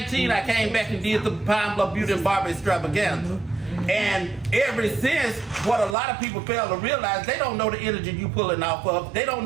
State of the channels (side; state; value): left; drops out; at 6.0 s